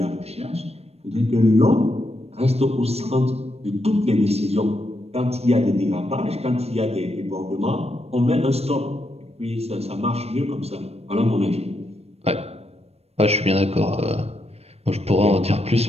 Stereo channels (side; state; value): left; late; 0.30 ms